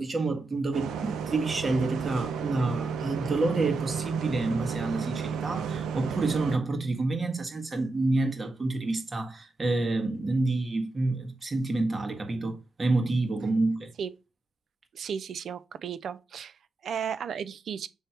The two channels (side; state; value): left; quieter; 3.1 dB